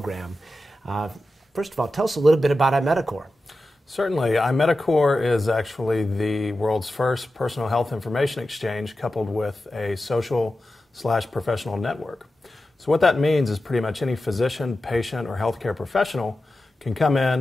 First of all, tell us a little bit about iMedicor. Certainly. iMedicor is actually the world's first personal health information exchange coupled with a social/professional network. So what that means is pretty much any physician, patient, or healthcare professional can come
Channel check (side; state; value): both; normal; correlation 0.92